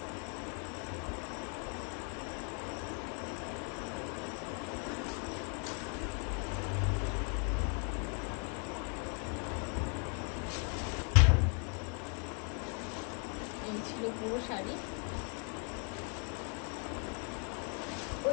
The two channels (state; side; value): quieter; right; 39.7 dB